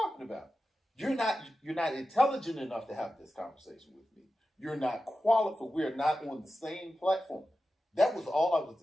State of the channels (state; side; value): normal; both; correlation 0.93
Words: about. You're not intelligent enough to have this conversation with me. You're not qualified. We're not on the same platform. That was all I was